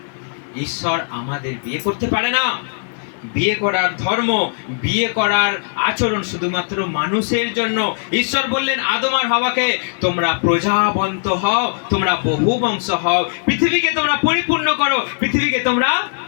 ঈশ্বর আমাদের বিয়ে করতে পারে না। বিয়ে করার ধর্ম, বিয়ে করার আচরণ শুধুমাত্র মানুষের জন্য। ঈশ্বর বললেন আদম আর হাওয়াকে, তোমরা প্রজাবন্ত হও, তোমরা বহু বংশ হও, পৃথিবীকে তোমরা পরিপূর্ণ করো, পৃথিবীকে তোমরা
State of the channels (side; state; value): right; silent; digital silence